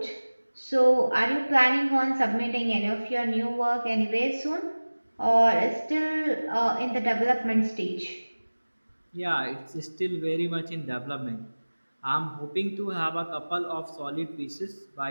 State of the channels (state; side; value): inverted; both; correlation -1.00